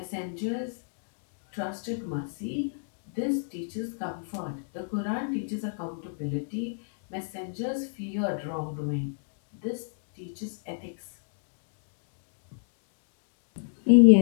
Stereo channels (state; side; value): silent; right; digital silence